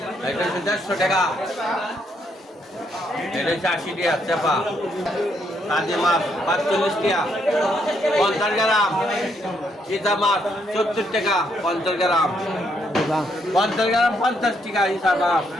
এটা হচ্ছে 150 টাকা, এটা হচ্ছে 80 টাকা চাপা। কাজী মাছ 45 টাকা 50 গ্রাম, চিতা মাছ 70 টাকা 50 গ্রাম, 50 গ্রাম 50 টাকা হিসাব মাছ।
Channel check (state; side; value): normal; both; correlation 0.74